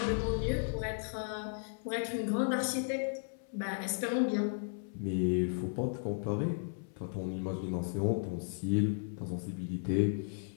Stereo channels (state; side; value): silent; right; 54 dB below the other